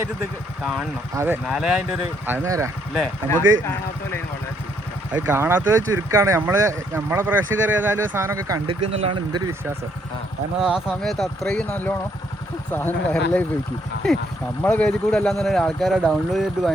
ഇത് കാണണം. അതെ, എന്നാലേ അതിന്റെ ഒരു അത് നേരാ. അല്ലേ? നമുക്ക് വളരെ അത് കാണാത്തത് ചുരുക്കാണ്. നമ്മളെ പ്രേക്ഷകർ ഏതായാലും സാധനമൊക്കെ കണ്ടിക്കുന്നുള്ളതാണ് എൻ്റെ ഒരു വിശ്വാസം. കാരണം ആ സമയത്ത് അത്രയും നല്ലോണം സാധനം വൈറലായി പോയിക്കും. നമ്മളെ പേജിൽ കൂടെ അല്ലാന്ന് പറഞ്ഞാൽ ആൾക്കാരെ ഡൗൺലോഡ് ചെയ്തിട്ട്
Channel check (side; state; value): both; normal; correlation 0.70